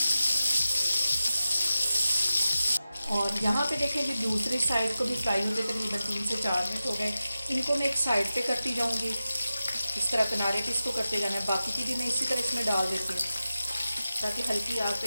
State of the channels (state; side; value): inverted; both; correlation -0.93